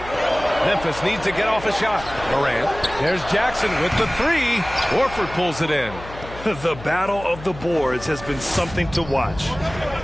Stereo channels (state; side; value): noise; left; hum, 15 dB below the sound